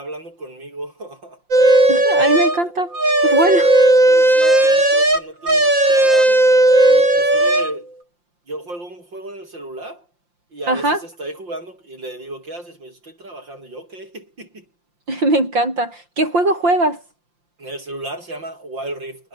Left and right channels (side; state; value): left; late; 5.7 ms